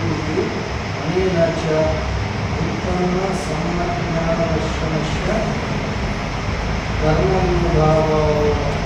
ఇది అనేన చ ఉత్పన్న సమ్మజ్ఞానదర్శనస్య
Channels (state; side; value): identical; both; correlation 1.00